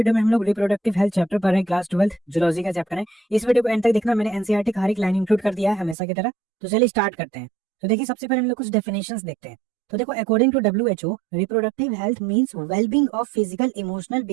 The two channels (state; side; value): drops out; left; at 6.0 s